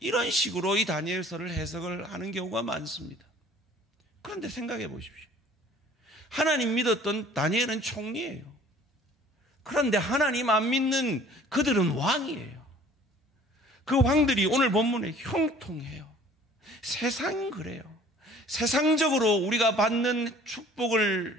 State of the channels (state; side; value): normal; both; correlation 0.51